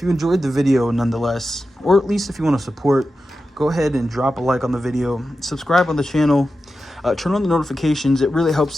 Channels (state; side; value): normal; both; correlation 0.92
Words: you enjoyed the video nonetheless, or at least if you want to support, go ahead and drop a like on the video, subscribe on the channel, turn on the notifications. It really helps